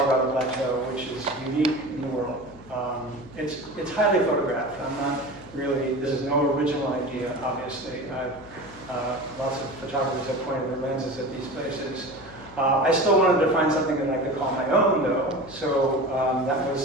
Plateau, which is unique in the world. It's highly photographed. I'm not really. This is no original idea, obviously. Lots of photographers have pointed their lenses at these places. I still wanted to find something that I could call my own, though. So that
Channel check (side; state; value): left; noise; hum, 20 dB below the sound